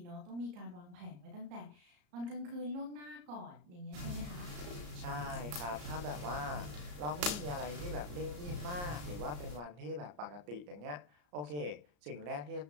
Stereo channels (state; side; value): late; left; 34 ms